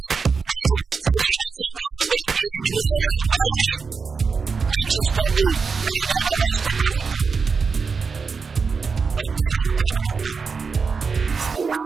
తల్లి చల్లని చూపులు అందరికీ అన్ని వేళలా అందాలని కాంక్షిస్తోంది తెలంగాణ రాష్ట్ర ప్రభుత్వం. బంగారం తాపడంతో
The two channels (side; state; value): left; quieter; 5.1 dB